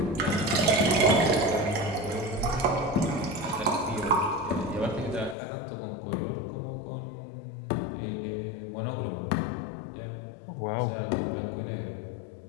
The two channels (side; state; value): right; drops out; at 5.4 s